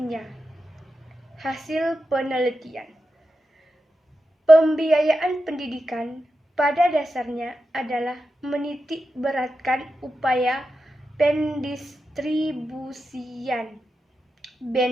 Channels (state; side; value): normal; both; correlation 0.89